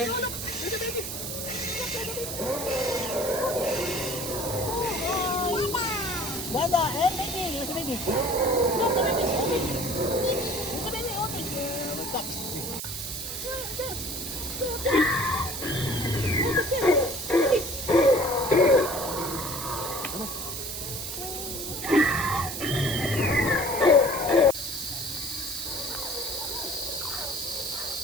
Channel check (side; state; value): right; noise; hiss, 6 dB below the sound